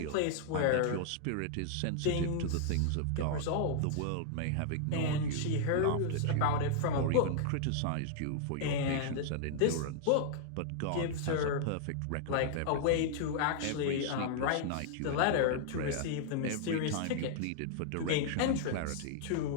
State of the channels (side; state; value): both; different; correlation -0.01